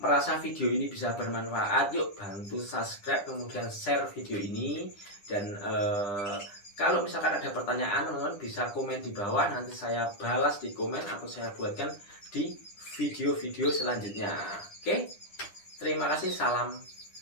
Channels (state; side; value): late; right; 9.9 ms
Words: merasa video ini bisa bermanfaat, yuk bantu subscribe kemudian share video ini. Dan kalau misalkan ada pertanyaan, teman-teman bisa komen di bawah, nanti saya balas di komen atau saya buatkan di video-video selanjutnya. Oke, terima kasih, salam